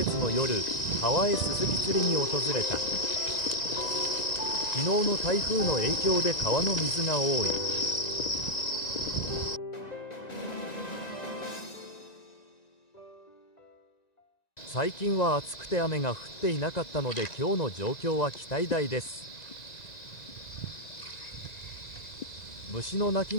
の夜、川へスズキ釣りに訪れた。昨日の台風の影響で川の水が多い。最近は暑くて雨が降っていなかったので今日の状況は期待大です。虫の鳴き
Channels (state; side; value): late; right; 1.9 ms